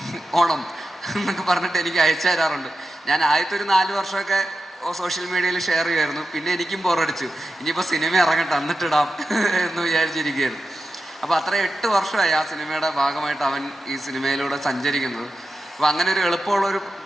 ഓണം എന്നൊക്കെ പറഞ്ഞിട്ട് എനിക്ക് അയച്ചു തരാറുണ്ട്. ഞാൻ ആദ്യത്തെ ഒരു 4 വർഷമൊക്കെ സോഷ്യൽ മീഡിയയിൽ ഷെയർ ചെയ്യുമായിരുന്നു. പിന്നെ എനിക്കും ബോറടിച്ചു, ഇനിയിപ്പോൾ സിനിമ ഇറങ്ങട്ടെ എന്നിട്ടിടാം എന്ന് വിചാരിച്ചിരിക്കുകയായിരുന്നു. അപ്പോൾ അത്ര 8 വർഷമായി ആ സിനിമയുടെ ഭാഗമായിട്ട് അവൻ ഈ സിനിമയിലൂടെ സഞ്ചരിക്കുന്നത്. അപ്പോൾ അങ്ങനെ ഒരു എളുപ്പമുള്ള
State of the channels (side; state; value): both; normal; correlation 0.91